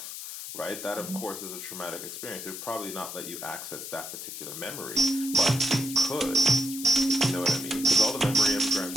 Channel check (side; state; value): left; noise; hiss, 9 dB below the sound